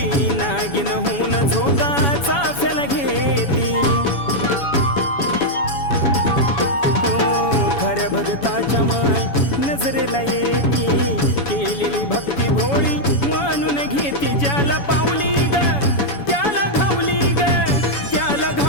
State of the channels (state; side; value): late; right; 7.1 ms